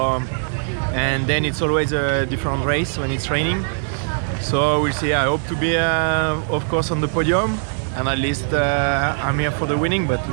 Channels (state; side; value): silent; left; 65 dB below the other